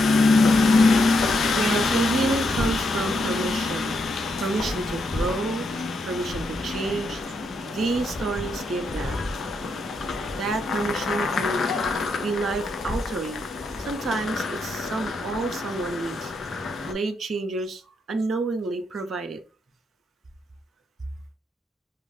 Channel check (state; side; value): normal; both; correlation 0.80